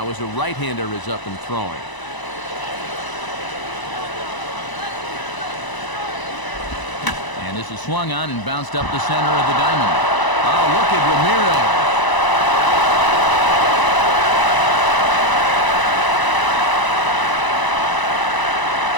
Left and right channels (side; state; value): right; late; 1.0 ms